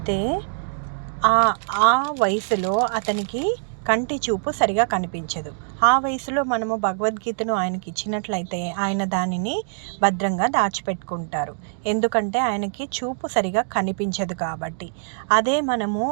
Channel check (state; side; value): silent; left; digital silence